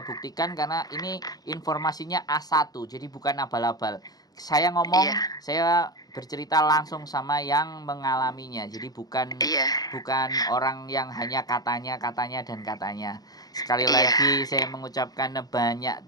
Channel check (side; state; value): right; late; 0.19 ms